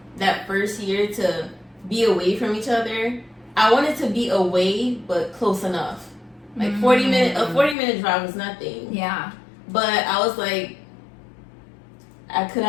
that first year to be away from each other, I wanted to be away but close enough. Like 40 minute drive was nothing. Yeah. But I was like, could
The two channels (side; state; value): right; drops out; at 7.8 s